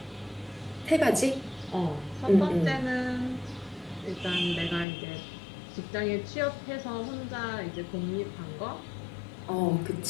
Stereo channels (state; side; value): drops out; right; at 4.9 s